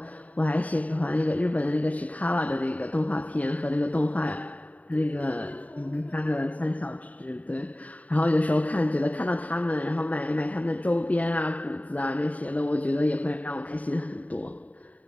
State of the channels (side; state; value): right; late; 0.070 ms